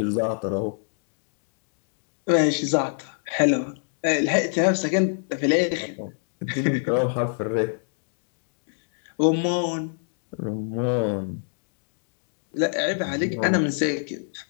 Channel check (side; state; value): right; silent; digital silence